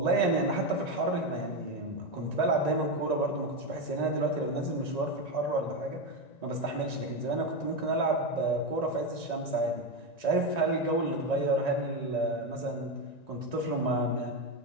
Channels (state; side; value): late; right; 1.9 ms